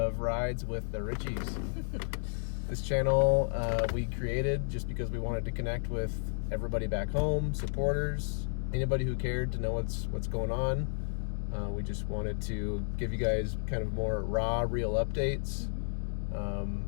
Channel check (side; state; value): right; silent; digital silence